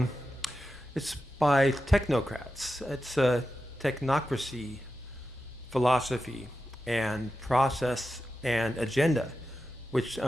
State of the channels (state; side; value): normal; both; correlation 0.91